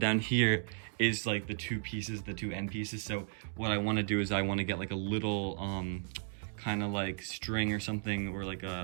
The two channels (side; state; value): left; silent; digital silence